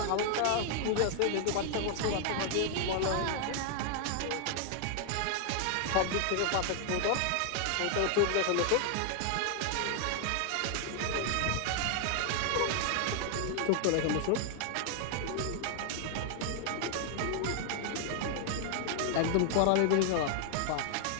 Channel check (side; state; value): both; different; correlation 0.00